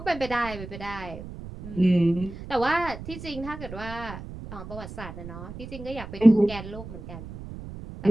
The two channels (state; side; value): noise; right; rumble, 12 dB below the sound